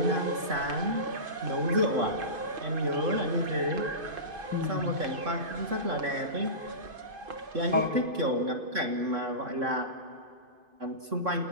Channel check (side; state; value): left; late; 2.5 ms